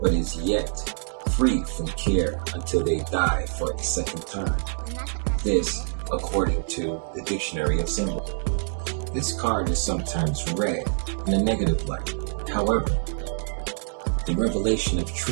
but is yet free from care until they die for a second time. This, according to the Dictionary of Symbols. This card is sometimes read in a negative light. However, the revelation of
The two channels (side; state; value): left; silent; digital silence